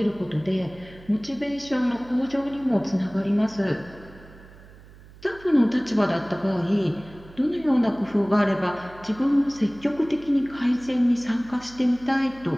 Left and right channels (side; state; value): right; noise; hum, 21 dB below the sound